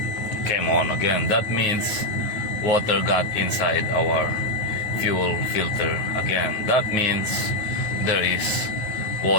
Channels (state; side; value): late; right; 9.4 ms